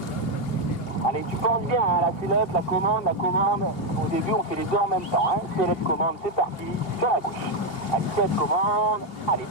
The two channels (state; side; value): late; right; 2.8 ms